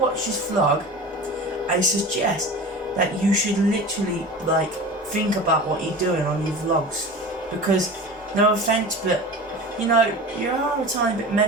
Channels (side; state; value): both; normal; correlation 0.34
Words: this vlog, I suggest that you should literally like think about what you're doing on your vlogs, because no offence, but you know you are a tiny bit